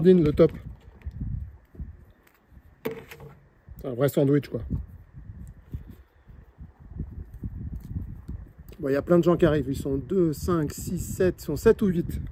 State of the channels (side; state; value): both; identical; correlation 1.00